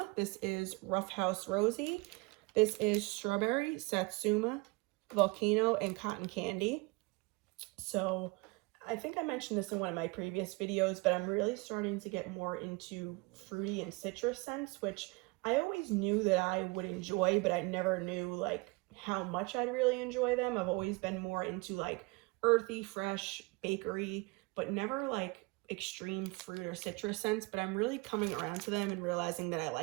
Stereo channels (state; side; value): quieter; left; 25.9 dB